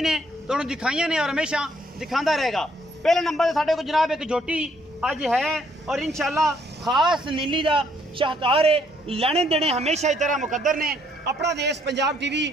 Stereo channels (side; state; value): both; normal; correlation 0.68